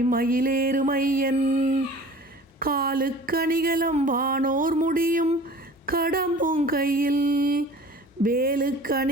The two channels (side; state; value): both; normal; correlation 0.44